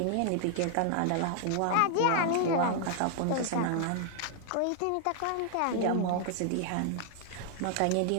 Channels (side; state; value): both; different; correlation 0.00